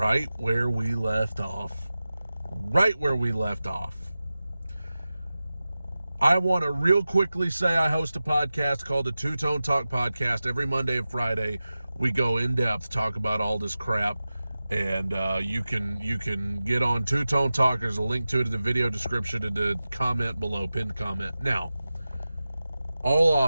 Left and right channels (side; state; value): both; inverted; correlation -0.95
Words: where we left off. Right where we left off. I want to real quickly say I host a podcast called the Two Tone Talk Podcast. Every Monday and Friday, we go in depth, talk about all this crap. And you can get on Two Tone Talk. There's a link to it in the video description and the comment below, pinned comment. Now, all